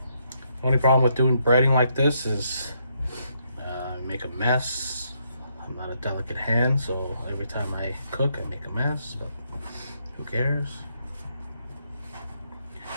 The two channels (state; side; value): inverted; both; correlation -0.75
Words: only problem with doing breading like this is make a mess. I'm not a delicate hand, so every time I cook I make a mess, but who cares?